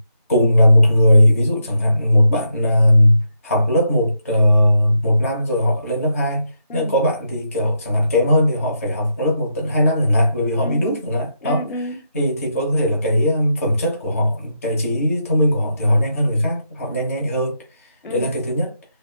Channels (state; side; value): inverted; both; correlation -0.82